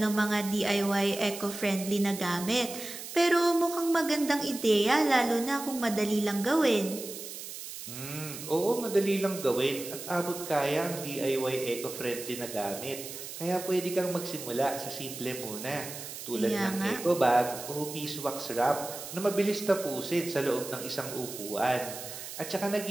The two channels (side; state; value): right; noise; hiss, 10 dB below the sound